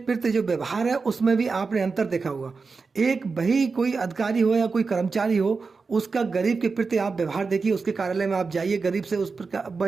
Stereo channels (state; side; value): quieter; left; 4.6 dB